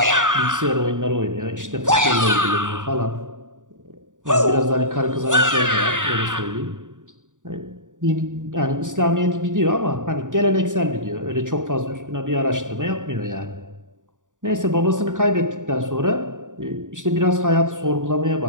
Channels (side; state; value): left; late; 0.87 ms